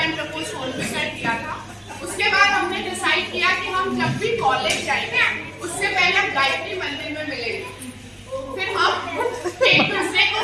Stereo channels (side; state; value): both; identical; correlation 1.00